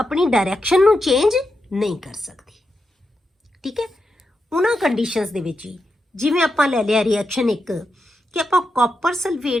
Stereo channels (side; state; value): both; normal; correlation 0.86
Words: डायरैक्शन नू चेंज नहीं कर सकती। ठीक है, उन्हां कंडीशंस दे विच ही जिवें आपां लै लिया रिएक्शन एक कि आपां कॉपर